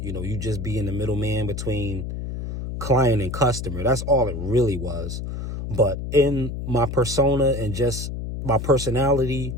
just be in the middleman between client and customer. That's all it really was. But in my persona and just my personality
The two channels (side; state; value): left; noise; hum, 6 dB below the sound